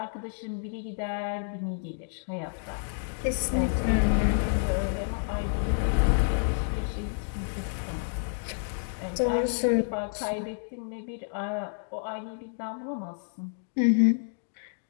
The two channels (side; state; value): right; silent; digital silence